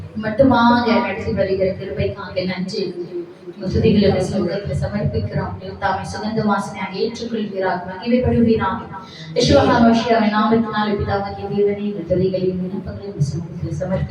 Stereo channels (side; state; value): both; identical; correlation 1.00